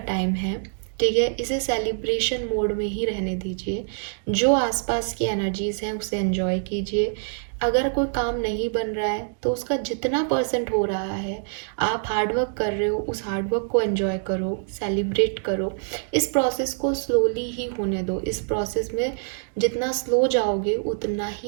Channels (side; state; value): left; silent; digital silence